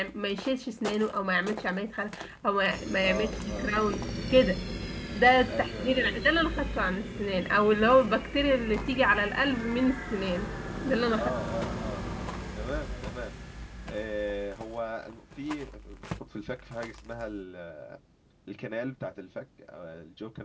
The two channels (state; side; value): identical; both; correlation 1.00